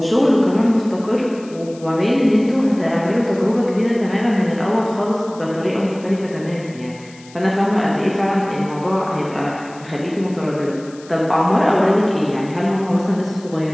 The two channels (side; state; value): left; noise; hiss, 23 dB below the sound